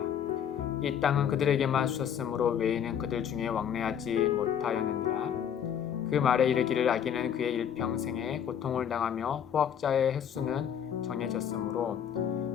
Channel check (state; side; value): quieter; right; 8.7 dB